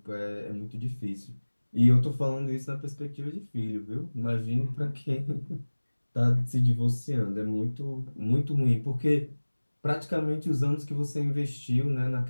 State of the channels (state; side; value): inverted; both; correlation -1.00